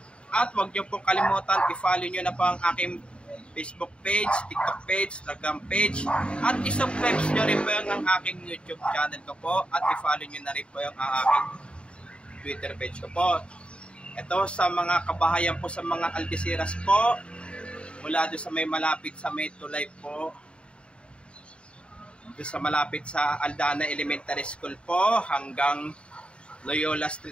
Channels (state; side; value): late; right; 0.056 ms